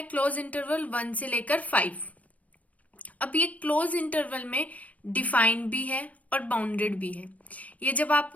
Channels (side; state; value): right; late; 0.070 ms